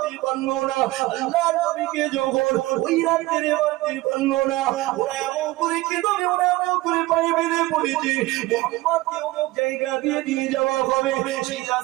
পারলো না, আল্লাহর নবীকে যখন ওই রাতে মারতে পারলো না, ওরা এমন করে কেঁদে, ওরা এমন করে পায়ে বেঁধে পড়েছে মুহাম্মদকে অমুক জায়গা দিয়ে নিয়ে যাওয়া হবে। সেই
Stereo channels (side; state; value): left; quieter; 19.4 dB